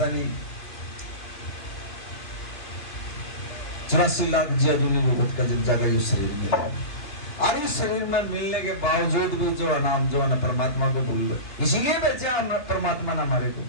नहीं 84 लाख जीवों का जब जाकर ये शरीर मिला। और इस शरीर में मिलने के बावजूद भी जो नाम जो है परमात्मा को भूल गए, इसीलिए बेचा परमात्मा ने हमारे को।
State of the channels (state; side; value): late; right; 2.8 ms